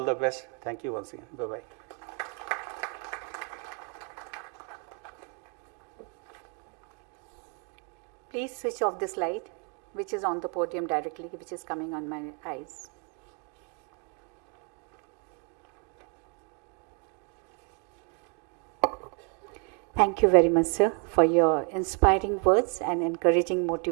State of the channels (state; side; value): quieter; left; 35.3 dB